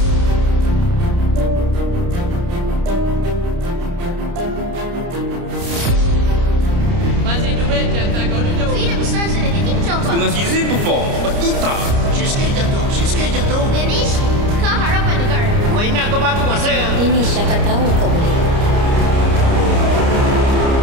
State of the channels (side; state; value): left; late; 30 ms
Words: Dengan Fizi perform, lepas tu tak. Sikit jatuh. Danish, kau harapan negara. Kau ingat kau bagus masa? Danish, siapa tahu kau boleh.